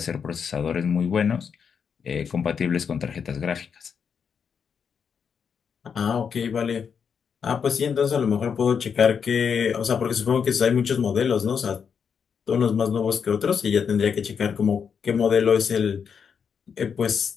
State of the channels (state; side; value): quieter; right; 6.8 dB